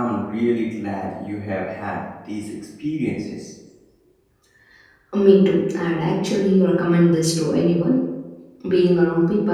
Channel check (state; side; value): identical; both; correlation 1.00